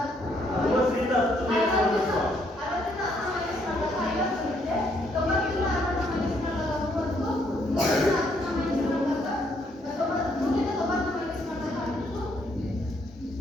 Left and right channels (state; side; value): normal; both; correlation 0.70